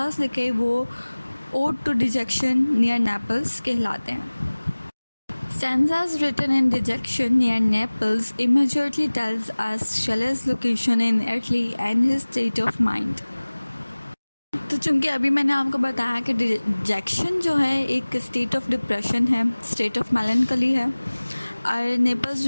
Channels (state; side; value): inverted; both; correlation -1.00